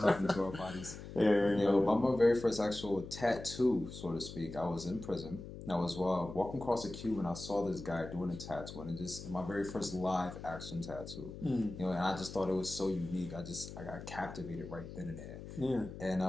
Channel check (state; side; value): noise; left; hum, 11 dB below the sound